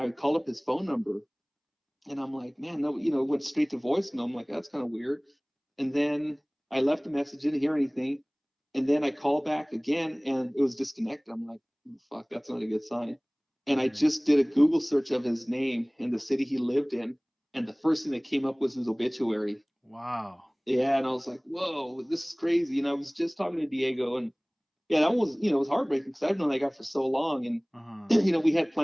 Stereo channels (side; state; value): both; identical; correlation 1.00